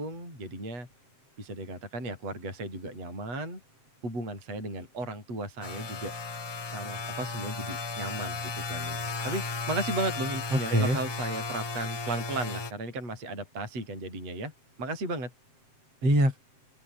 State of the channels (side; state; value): left; late; 7.4 ms